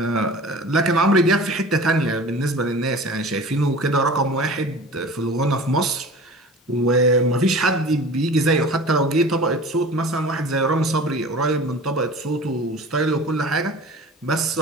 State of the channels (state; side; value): normal; both; correlation 0.39